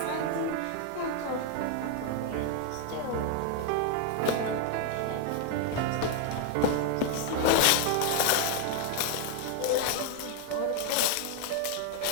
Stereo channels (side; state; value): both; different; correlation 0.01